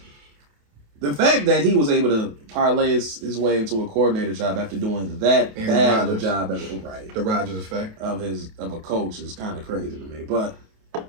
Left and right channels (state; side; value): late; left; 28 ms